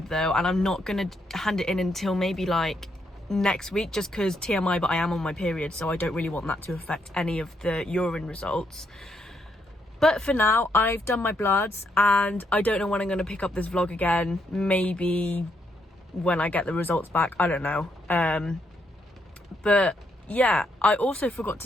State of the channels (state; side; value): normal; both; correlation 0.76